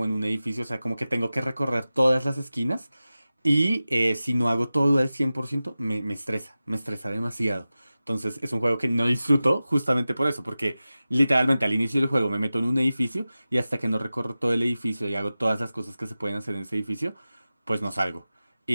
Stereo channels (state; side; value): inverted; both; correlation -0.95